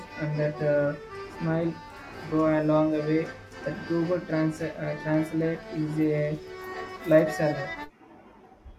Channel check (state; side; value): identical; both; correlation 1.00